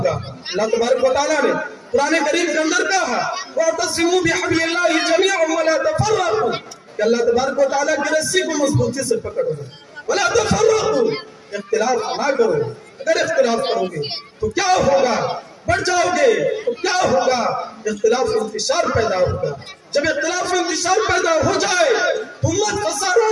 अल्लाह तबारक व तआला ने कुरान करीम के अंदर कहा वअतसिमू बिहब्लिल्लाहि जमीअन वला तफर्रकू, कि अल्लाह तबारक व तआला की रस्सी को मजबूती से पकड़ो, वला तफर्रकू, इख्तिलाफ ना करो। अगर इख्तिलाफ करोगे तो क्या होगा? बढ़ जाओगे तो क्या होगा? इख्तिलाफ इंतशार पैदा होगा। जब इख्तिलाफ इंतशार पैदा हो जाए तो उम्मत खसारा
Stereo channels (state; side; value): identical; both; correlation 1.00